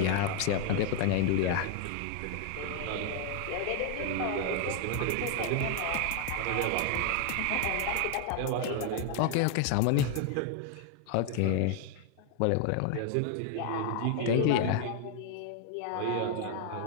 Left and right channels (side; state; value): both; different; correlation 0.00